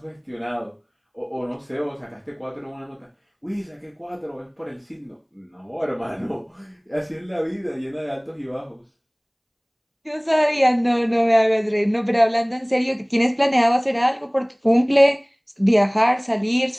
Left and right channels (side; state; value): both; identical; correlation 1.00